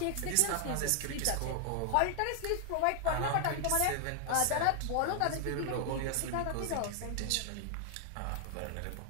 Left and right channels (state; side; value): different; both; correlation 0.00